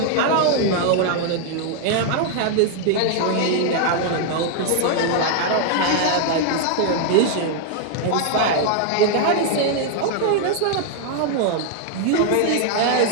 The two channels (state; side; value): different; both; correlation 0.00